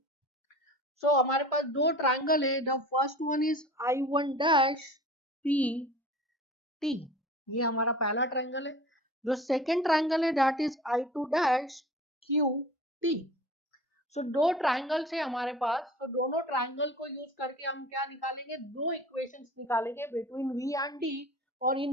सो हमारे पास दो ट्रायंगल है. The first one is I1 dash P T, ये हमारा पहला ट्रायंगल है. जो सेकेंड ट्रायंगल है that is I2 dash Q T. सो दो ट्रायंगल्स है हमारे पास, तो दोनों ट्रायंगल को यूज करके हम क्या निकालेंगे, दो इक्वेशंस निकालेंगे बिटवीन V एंड D. और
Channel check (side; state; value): both; normal; correlation 0.40